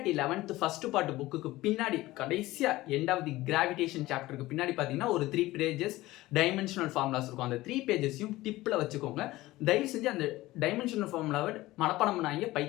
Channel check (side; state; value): right; quieter; 17.9 dB